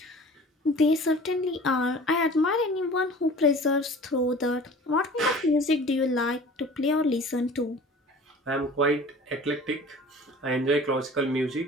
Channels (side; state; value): both; normal; correlation 0.44